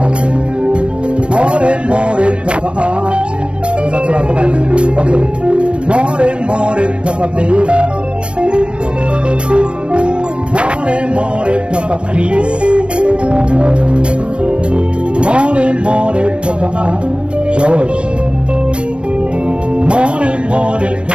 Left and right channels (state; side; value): late; left; 0.055 ms